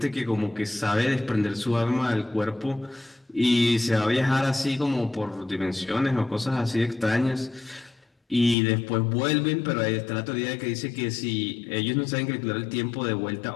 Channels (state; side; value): drops out; right; at 8.6 s